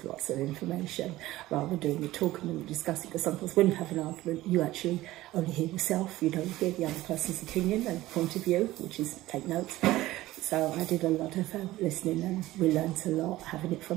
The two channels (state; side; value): quieter; left; 16.7 dB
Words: information rather than doing the talking and discussing, because sometimes when you have an argument you actually only hear yourself, you don't hear the other person's opinion and point of view, which is take notes. So I did a lot of listening, and we learnt a lot having it